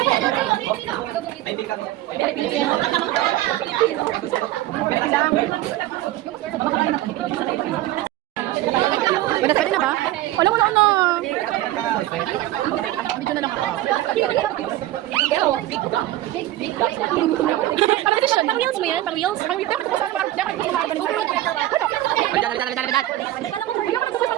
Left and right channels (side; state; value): left; quieter; 15.3 dB